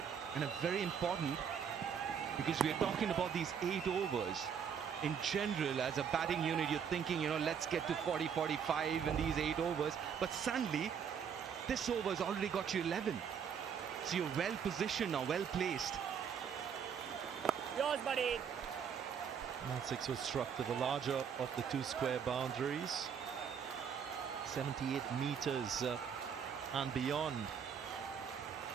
and a very important, because we're talking about these 8 overs. In general, as a batting unit, you're thinking, you know, let's get to 40, 45 in these 8 overs. But suddenly, this over's already got you 11. So you're well positioned now, well placed. Yours, buddy. That 6 was struck to the larger of the 2 square boundaries. 78 meters and beyond.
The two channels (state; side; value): quieter; left; 7.4 dB